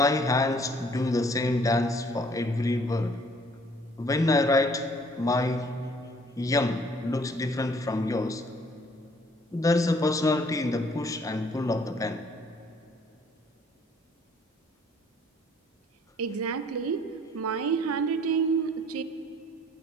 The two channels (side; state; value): both; normal; correlation 0.59